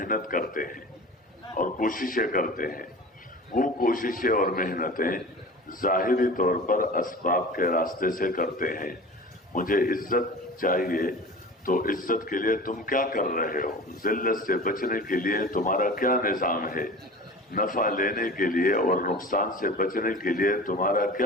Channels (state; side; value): normal; both; correlation 0.37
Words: करते हैं और कोशिशें करते हैं। वो कोशिशें और मेहनतें ज़ाहिरी तौर पर असबाब के रास्ते से करते हैं। मुझे इज्जत चाहिए, तो इज्जत के लिए तुम क्या कर रहे हो? जिल्लत से बचने के लिए तुम्हारा क्या निज़ाम है? नफा लेने के लिए और नुकसान से बचने के लिए तुम्हारा